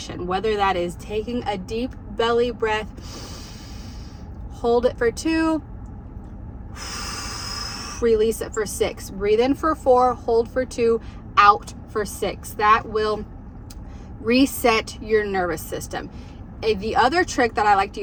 Whether that is taking a deep belly breath, hold it for 2, release it for 6. Breathe in for 4, hold for 2, out for 6. That will reset your nervous system. The other trick that I like to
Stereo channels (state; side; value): identical; both; correlation 1.00